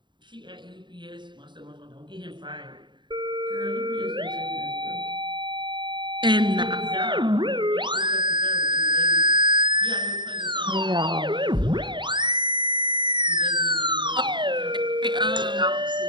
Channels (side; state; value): left; late; 0.23 ms